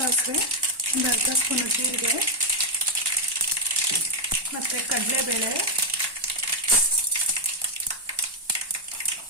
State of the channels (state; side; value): late; left; 1.1 ms